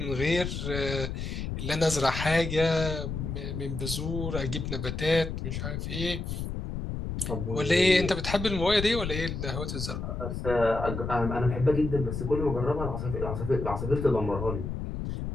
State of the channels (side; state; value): left; noise; rumble, 4 dB below the sound